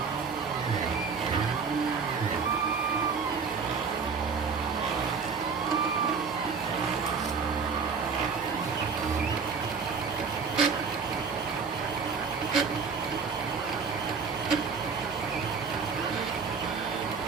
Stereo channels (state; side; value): quieter; left; 5.5 dB